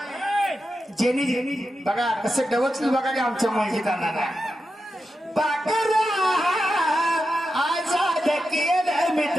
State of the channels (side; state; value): both; normal; correlation 0.89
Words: jenny jenny बघा कसं डवचलं बघा की आमच्या मुलगीतांना पाकरा आजाद केलं मी